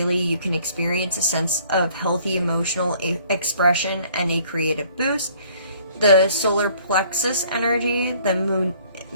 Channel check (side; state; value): both; inverted; correlation -0.58